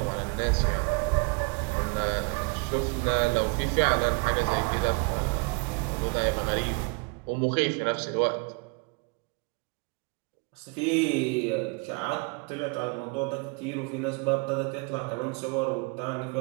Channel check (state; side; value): quieter; left; 32.5 dB